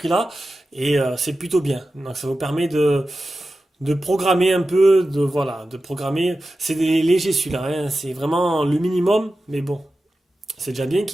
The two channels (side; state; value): both; normal; correlation 0.93